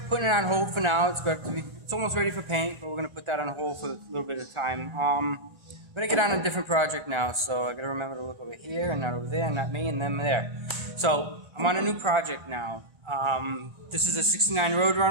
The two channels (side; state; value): left; late; 1.4 ms